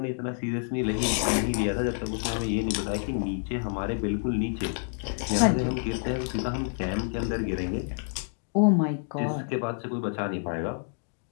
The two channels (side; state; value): right; silent; 59 dB below the other